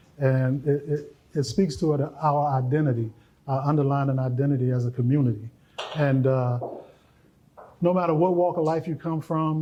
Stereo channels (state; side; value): identical; both; correlation 1.00